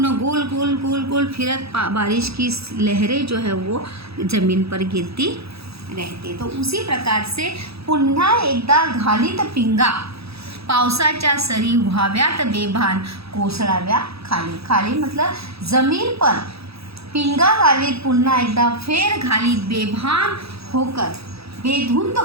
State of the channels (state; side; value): late; left; 0.77 ms